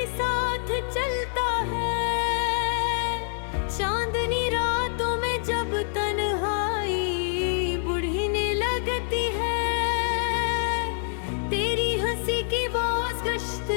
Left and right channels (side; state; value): right; silent; digital silence